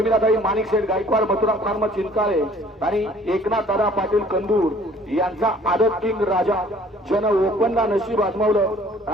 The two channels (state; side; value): normal; both; correlation 0.55